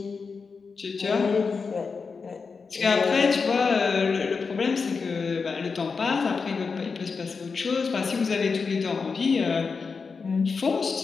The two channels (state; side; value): quieter; right; 5.0 dB